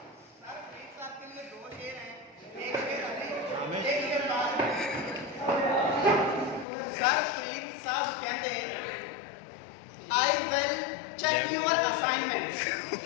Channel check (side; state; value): right; drops out; at 6.7 s